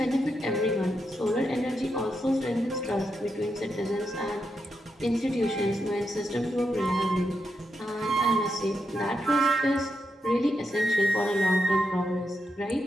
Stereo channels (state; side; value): normal; both; correlation 0.84